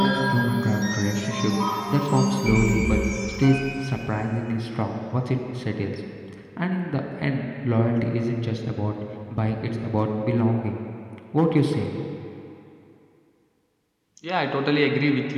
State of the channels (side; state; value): both; identical; correlation 1.00